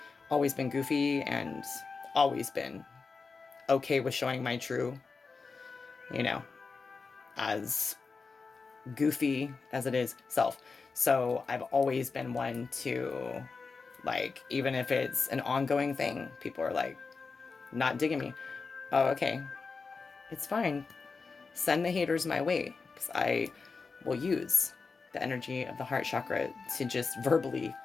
always been goofy and always been okay with showing my true, you know, as goofy as it is self. So I've always been one to, like, even if it's an ongoing thing, people are like not digging me. Oh, okay, it's fine. Send the haters my way, because I will use the energy of the heart chakra to just verbally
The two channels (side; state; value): right; quieter; 4.6 dB